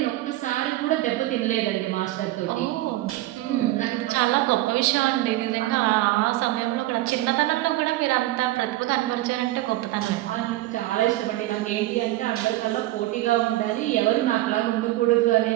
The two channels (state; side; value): quieter; left; 16.8 dB